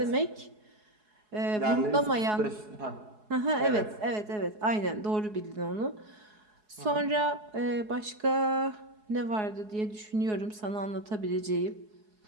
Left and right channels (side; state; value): left; late; 4.7 ms